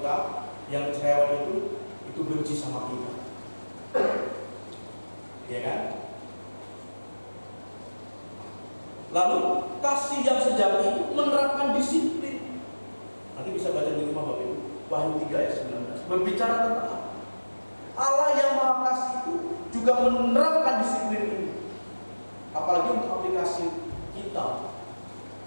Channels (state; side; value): inverted; both; correlation -1.00